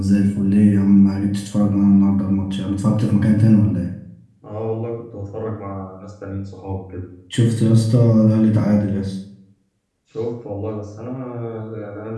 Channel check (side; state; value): both; identical; correlation 1.00